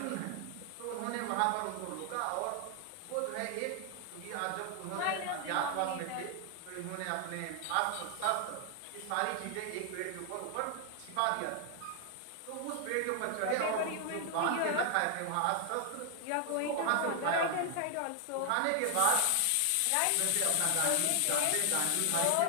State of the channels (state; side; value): different; both; correlation 0.00